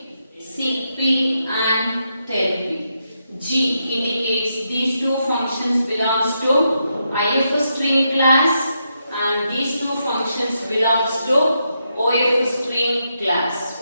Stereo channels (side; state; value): both; inverted; correlation -0.82